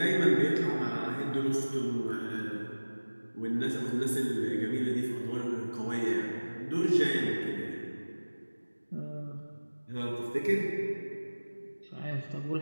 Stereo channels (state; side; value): inverted; both; correlation -1.00